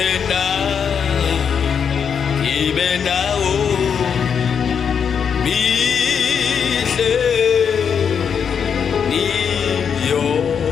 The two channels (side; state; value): right; quieter; 7.1 dB